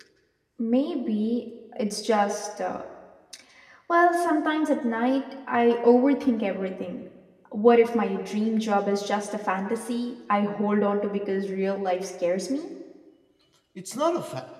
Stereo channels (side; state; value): both; identical; correlation 1.00